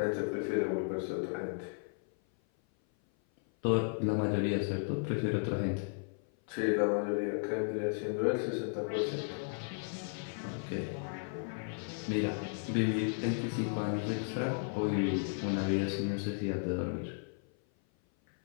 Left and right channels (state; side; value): silent; right; 55 dB below the other